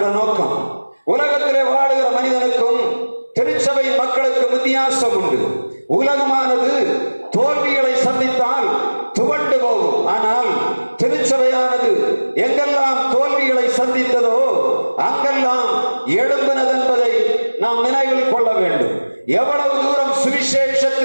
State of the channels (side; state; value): both; inverted; correlation -1.00